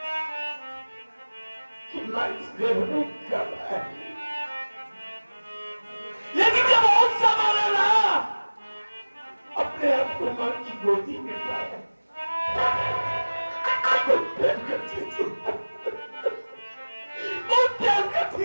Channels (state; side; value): inverted; both; correlation -1.00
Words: कि मैं इस घर में कब आई, लेकिन जब और संभाला ना अपने आप को मां की गोदी में पाया, बहुत प्यार करती थी, बहुत प्यार करती